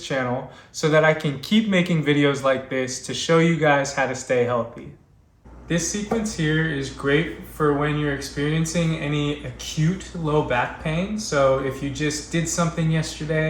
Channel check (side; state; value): both; identical; correlation 1.00